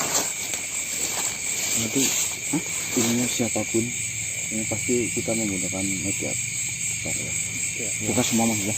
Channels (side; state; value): both; identical; correlation 1.00